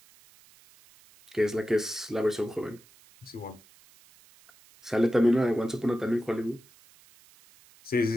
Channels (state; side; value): noise; right; hiss, 27 dB below the sound